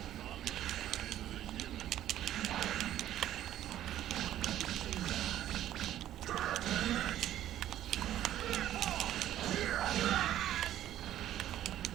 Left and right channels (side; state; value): left; quieter; 12.4 dB